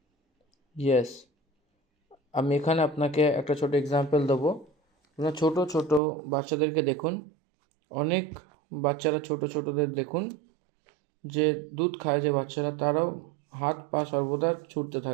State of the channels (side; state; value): left; drops out; at 6.0 s